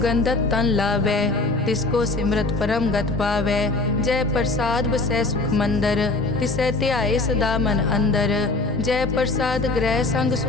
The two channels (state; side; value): quieter; right; 3.2 dB